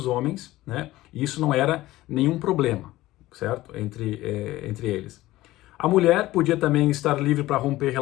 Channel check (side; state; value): right; quieter; 16.9 dB